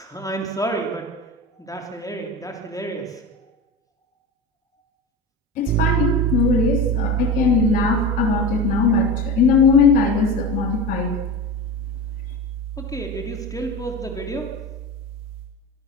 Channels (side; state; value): both; normal; correlation 0.27